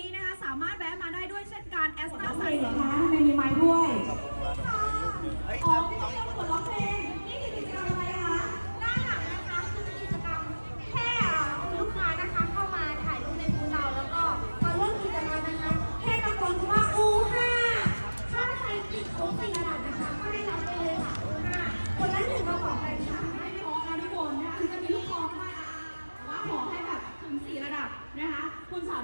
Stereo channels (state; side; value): inverted; both; correlation -1.00